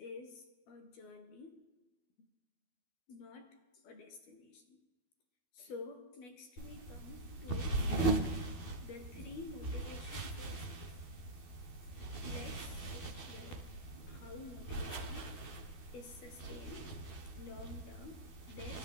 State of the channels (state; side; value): late; right; 12 ms